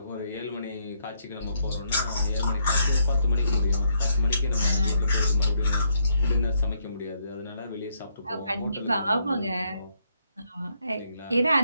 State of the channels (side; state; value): both; inverted; correlation -0.73